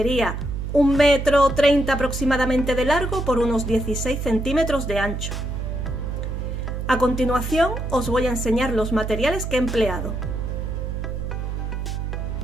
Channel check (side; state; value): right; noise; hum, 4 dB below the sound